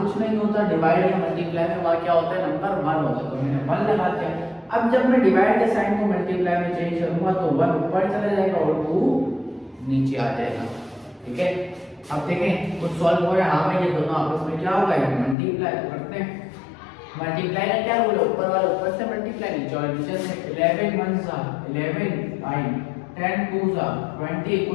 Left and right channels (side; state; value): right; drops out; at 15.4 s